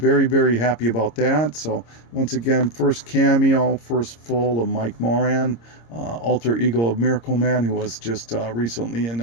very happy about that. So, once again, first cameo, first full of Mike Moran, alter ego of Miracle Man, who was just recently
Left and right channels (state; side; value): late; right; 26 ms